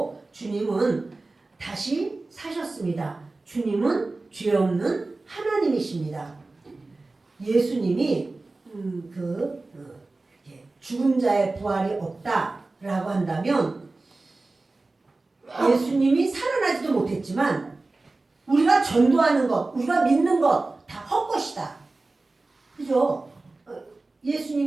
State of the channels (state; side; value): quieter; left; 3.3 dB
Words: 주님은 다시 사셨습니다. 주님은 죄 없는 하나님이십니다. 예수님이 죽은 자의 부활이 없다라고 한다면 예수님이 살아나지도 못했지만 우리가 전도하는 것, 우리가 믿는 것 다 헛것이다. 그죠?